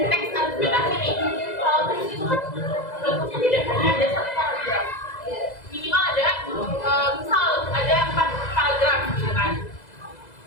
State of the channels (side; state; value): right; late; 2.0 ms